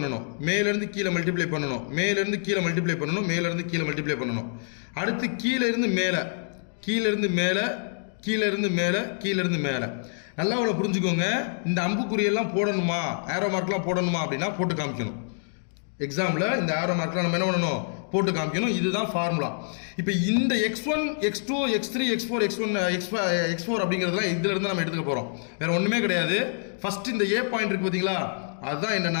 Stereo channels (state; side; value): silent; right; digital silence